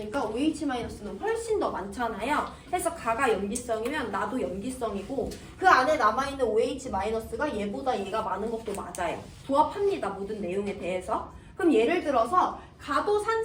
OH 마이너스는 훨씬 더 많잖아요. 해서 가가 염기성이면 나도 염기성이고 그 안에 남아있는 OH 마이너스가 얘보다 얘가 많은 것도 맞아요. 조합합니다. 모든 내용에 대해서. 그럼 예를 들어서 가도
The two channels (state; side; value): identical; both; correlation 1.00